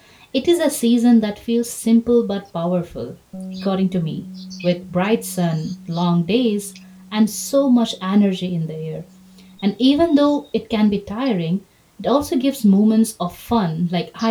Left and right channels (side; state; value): both; identical; correlation 1.00